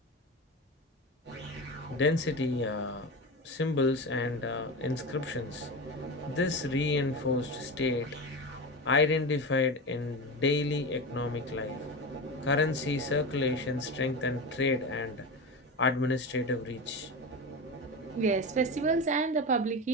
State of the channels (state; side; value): normal; both; correlation 0.23